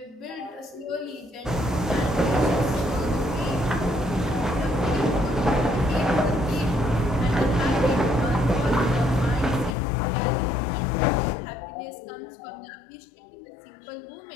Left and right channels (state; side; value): drops out; right; at 9.8 s